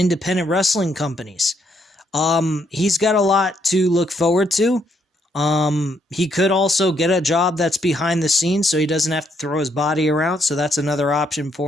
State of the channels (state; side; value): normal; both; correlation 0.73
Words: wrestling companies. He's got a lot to look forward to. He could also get a job that's behind the scenes so he doesn't have to throw his body around. So that's another option